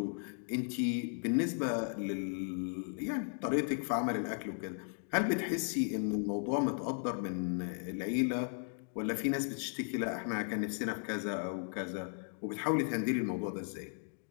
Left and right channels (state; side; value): silent; right; 54 dB below the other